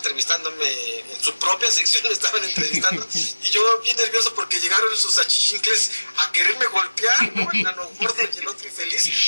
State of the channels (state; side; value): inverted; both; correlation -1.00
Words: en su propia sección, me estaban entrevistando, y yo bien nervioso porque llegaron sus achichincles a quererme golpear, ¿no? El nano gordo y el otro